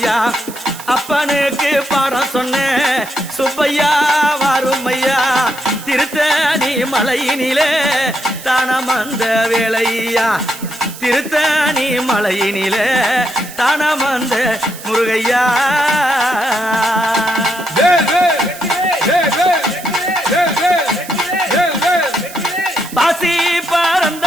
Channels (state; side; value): noise; right; hiss, 15 dB below the sound